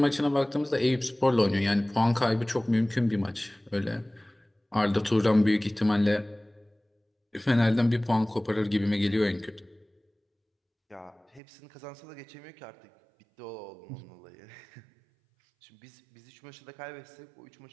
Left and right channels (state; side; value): drops out; left; at 11.4 s